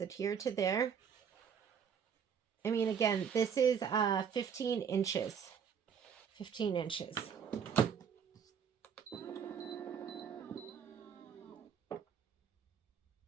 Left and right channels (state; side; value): quieter; left; 7.4 dB